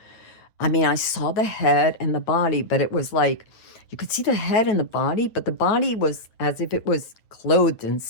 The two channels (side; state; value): right; late; 9.0 ms